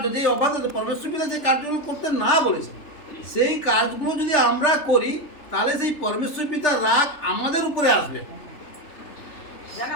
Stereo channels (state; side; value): late; right; 3.3 ms